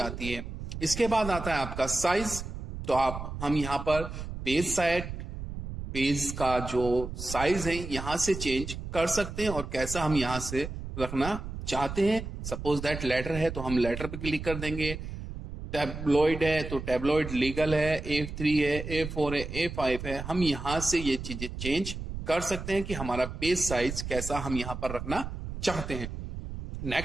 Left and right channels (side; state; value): right; noise; rumble, 8 dB below the sound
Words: है। इसके बाद आता है आपका साइज। तो हम यहां पर पेज का जो साइज है यहां से चेंज कर सकते हैं और कैसा हम यहां से रखना चाहते हैं। सपोज दैट लेटर है तो हम लेटर पे क्लिक कर देंगे, टैबलॉइड है तो टैबलॉइड, लीगल है, A3 है, A4 है, A5 है। हम यहां से ये चीजें चेंज कर सकते हैं कि हमारा पेज साइज कैसा हम यहां पर रखना चाहते हैं।